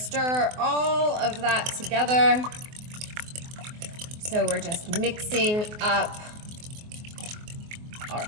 all of that together. So we're just mixing up our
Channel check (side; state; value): left; late; 24 ms